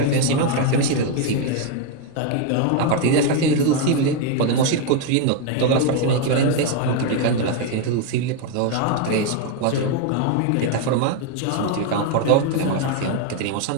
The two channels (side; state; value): both; different; correlation 0.01